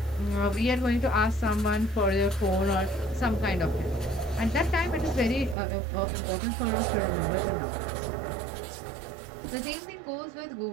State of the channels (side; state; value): left; drops out; at 5.6 s